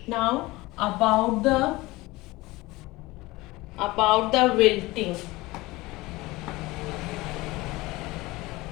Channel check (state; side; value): quieter; right; 20.7 dB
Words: Now about the wilting.